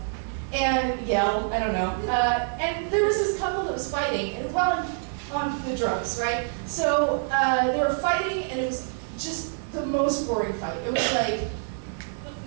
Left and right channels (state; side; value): silent; left; 61 dB below the other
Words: and yell. I don't know. And there was this couple that was fighting, and on the drugs, right? So they were fighting, and it was just the most boring fight. It was like